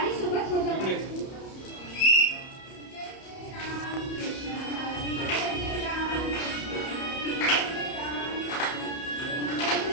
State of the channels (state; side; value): late; right; 31 ms